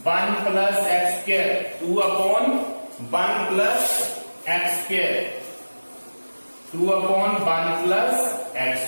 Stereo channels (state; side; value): inverted; both; correlation -1.00